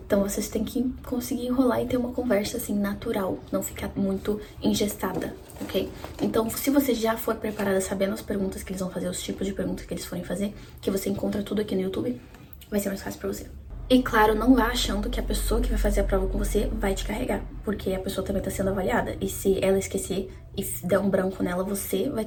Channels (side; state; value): both; identical; correlation 1.00